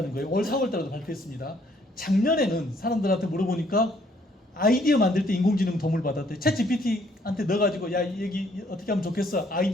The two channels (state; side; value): normal; both; correlation 0.65